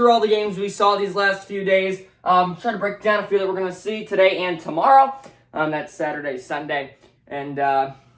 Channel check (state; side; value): identical; both; correlation 1.00